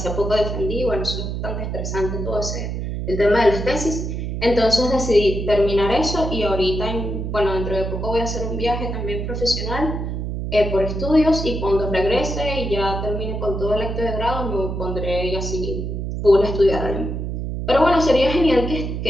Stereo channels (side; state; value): right; noise; hum, 4 dB below the sound